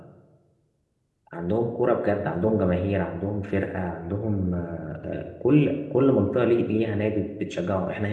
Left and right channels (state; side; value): identical; both; correlation 1.00